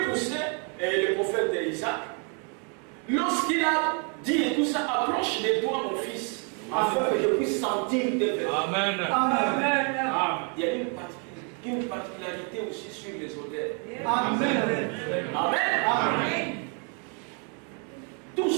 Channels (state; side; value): quieter; left; 38.5 dB